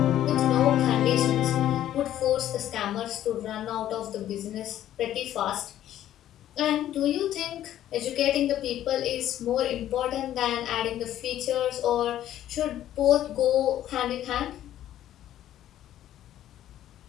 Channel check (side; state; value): right; quieter; 12.1 dB